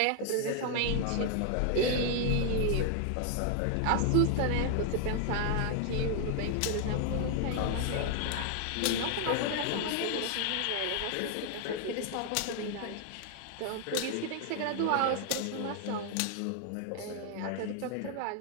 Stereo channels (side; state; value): both; different; correlation 0.00